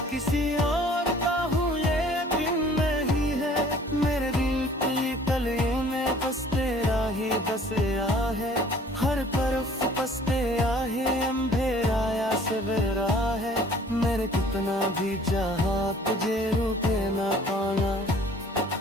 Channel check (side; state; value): both; normal; correlation 0.53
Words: किसी और का हूँ ये दिन नहीं है। मेरे दिल की गलियों में बस तेरा ही बसया है, हर तरफ बस तेरा ही अंधेरा या सवेरा है। मेरे कितना भी चाहा तुझे रुके ना पाना,